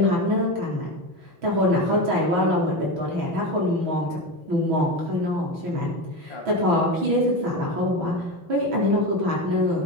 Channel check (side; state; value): left; late; 6.1 ms